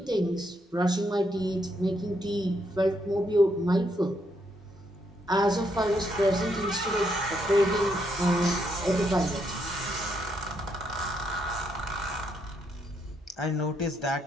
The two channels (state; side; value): normal; both; correlation 0.76